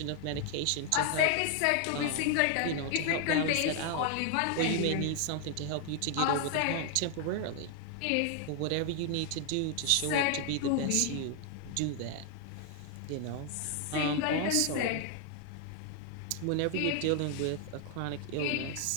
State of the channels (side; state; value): both; different; correlation 0.00